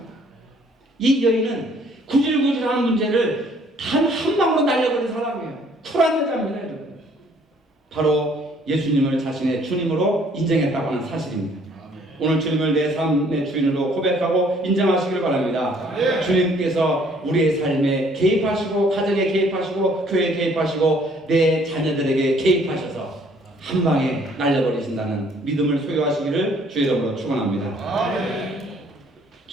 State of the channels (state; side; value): normal; both; correlation 0.61